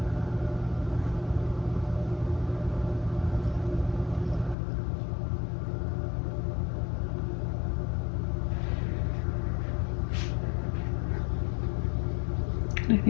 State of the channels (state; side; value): drops out; right; at 4.5 s